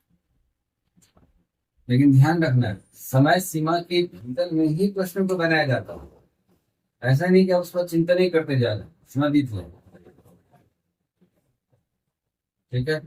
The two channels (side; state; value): both; identical; correlation 1.00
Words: लेकिन ध्यान रखना है, समय सीमा के भीतर में ही प्रश्न को बनाया जाता है। ऐसा नहीं कि आप उस पर चिंता नहीं करते जा रहे, समय बीत जाए। ठीक है,